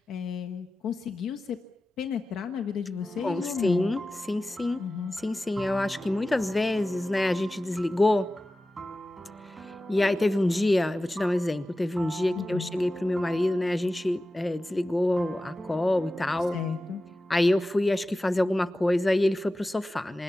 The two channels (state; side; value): normal; both; correlation 0.95